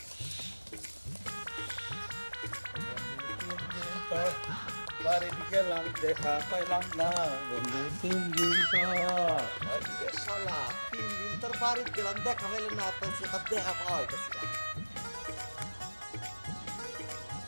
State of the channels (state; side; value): inverted; both; correlation -1.00